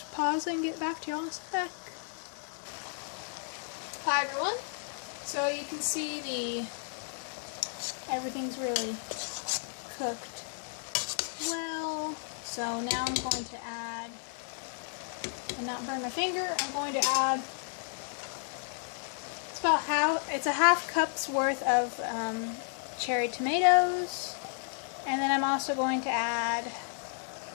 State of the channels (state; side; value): silent; right; 56 dB below the other